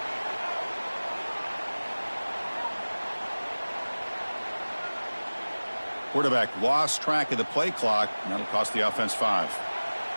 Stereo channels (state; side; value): inverted; both; correlation -1.00